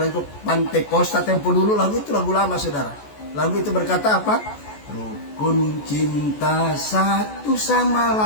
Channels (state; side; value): late; right; 14 ms